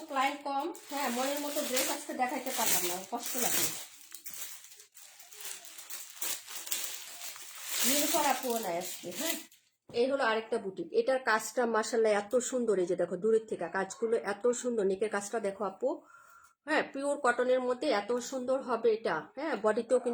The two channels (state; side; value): identical; both; correlation 1.00